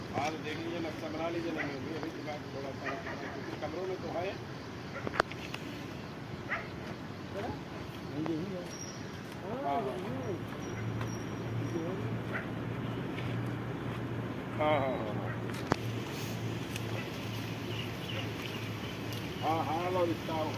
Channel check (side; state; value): both; identical; correlation 1.00